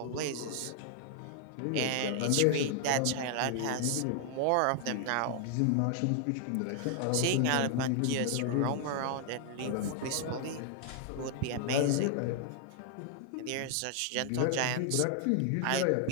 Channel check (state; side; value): different; both; correlation 0.00